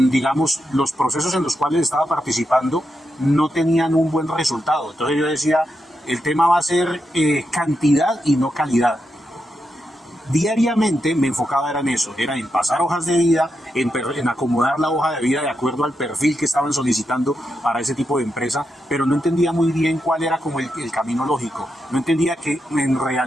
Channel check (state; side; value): normal; both; correlation 0.85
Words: los procesos en los cuales estaba participando no tenían un buen resultado. Entonces yo decía, el tema va a ser cantidad y no calidad. Diariamente me enfocaba en eso, era en pasar hojas de vida, en acomodar la hoja de vida de acuerdo al perfil que estaban solicitando para ese tipo de empresa, pero no entendía muy bien cuál era como el camino lógico. No entendía que en